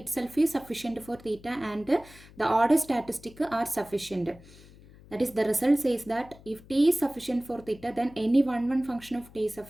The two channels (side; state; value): left; noise; hum, 22 dB below the sound